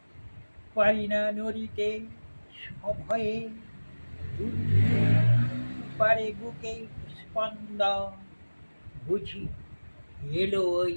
পারি না নড়িতে সভয়ে। দুলতে পারে বুকে স্পন্দন, বুঝি এলো ওই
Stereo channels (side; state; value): both; inverted; correlation -1.00